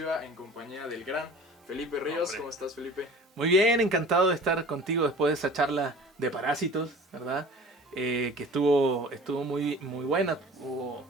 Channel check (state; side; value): normal; both; correlation 0.43